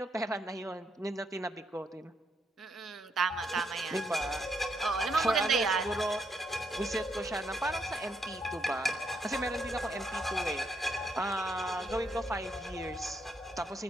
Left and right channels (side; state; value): both; normal; correlation 0.77